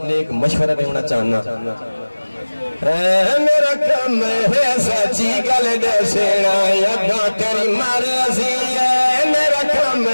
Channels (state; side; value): inverted; both; correlation -1.00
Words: نیک مشورہ دینا چاہنا میرا کم ہے سچی گل دسنا یگاں تیری مرضی ہے میرا کم